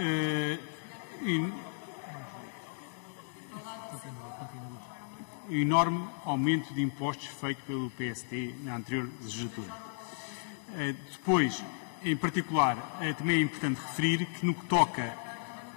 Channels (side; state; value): right; silent; digital silence